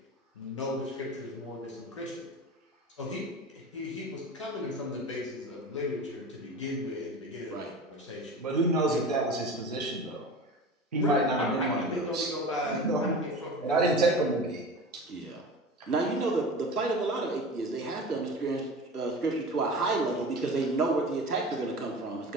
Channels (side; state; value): both; normal; correlation 0.34